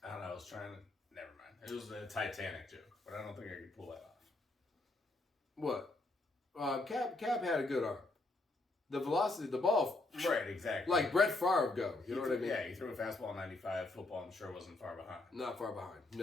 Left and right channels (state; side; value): quieter; right; 3.0 dB